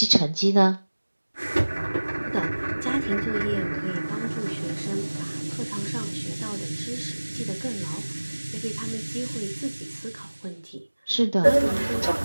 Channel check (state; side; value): inverted; both; correlation -1.00